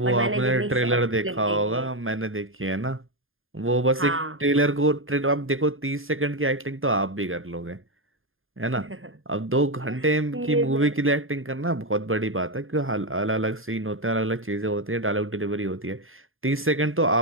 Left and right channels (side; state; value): left; late; 0.60 ms